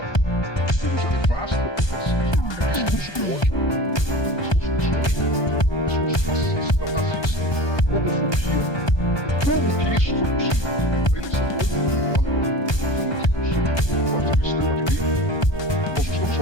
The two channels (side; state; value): right; late; 1.2 ms